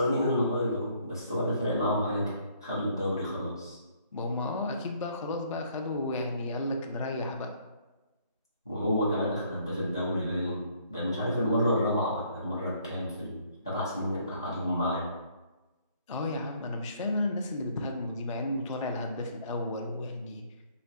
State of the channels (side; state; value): both; inverted; correlation -0.64